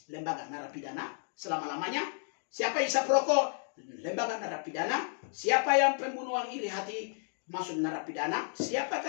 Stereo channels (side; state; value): right; silent; 56 dB below the other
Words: Lembaga narapidana selama-lamanya. Siapa yang isap rokok, lembaga narapidana. Siapa yang pembunuhan iri hati, masuk narapidana.